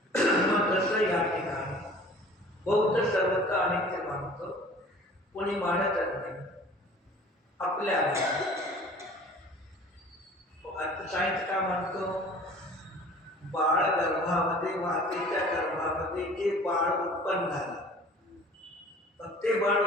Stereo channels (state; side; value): normal; both; correlation 0.46